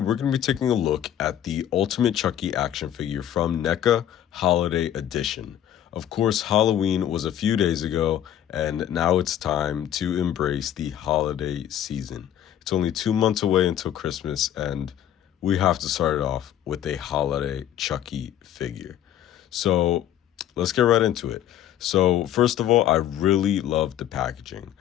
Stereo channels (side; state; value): right; quieter; 11.1 dB